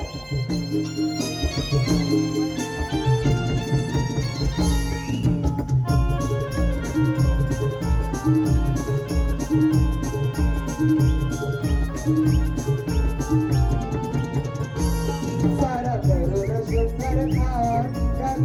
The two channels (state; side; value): identical; both; correlation 1.00